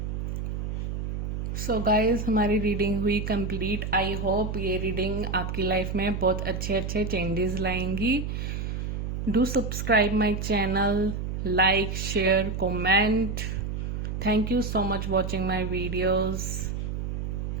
सो गाइस, हमारी रीडिंग हुई कंप्लीट। आई होप ये रीडिंग आपकी लाइफ में बहुत अच्छे अच्छे चेंजेस लाएंगी। Do subscribe my channel, like, share, comment. Thank you so much watching my videos.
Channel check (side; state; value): right; noise; hum, 3 dB below the sound